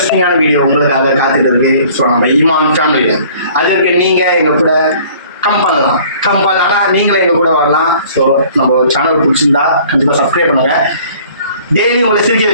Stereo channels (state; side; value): inverted; both; correlation -0.53